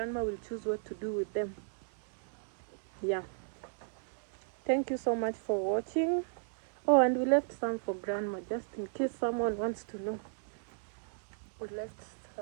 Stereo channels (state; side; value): silent; left; 55 dB below the other